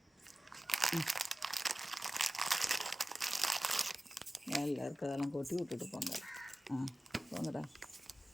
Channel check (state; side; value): normal; both; correlation 0.96